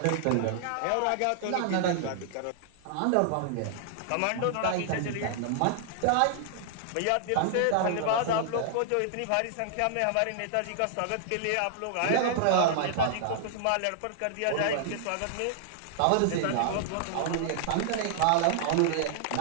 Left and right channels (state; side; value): different; both; correlation -0.01